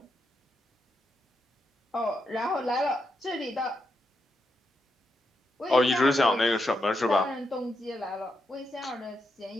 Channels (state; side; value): normal; both; correlation 0.83